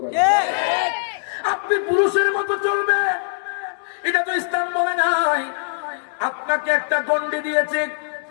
আপনি পুরুষের মতো চলবে, এটা তো ইসলাম বলে নাই। আপনাকে একটা গন্ডি দিয়েছে,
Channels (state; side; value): silent; right; digital silence